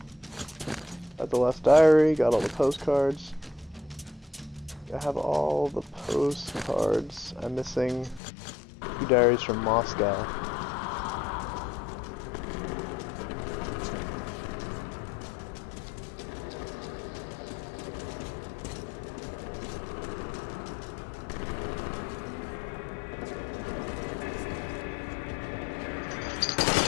Got the last diary, got all the postcards. I have all the postcards. I'm missing 2 diaries from Moscow.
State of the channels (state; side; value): drops out; right; at 8.2 s